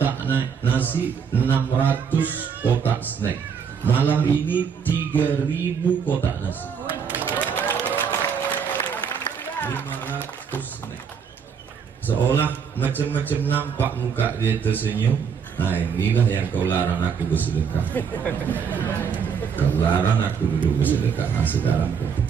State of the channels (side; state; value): left; quieter; 6.7 dB